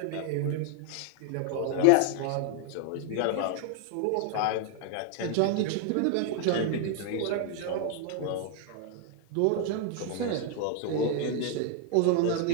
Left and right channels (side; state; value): both; different; correlation 0.00